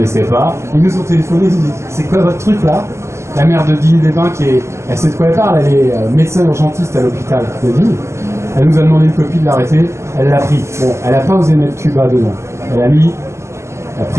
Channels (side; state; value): left; late; 0.13 ms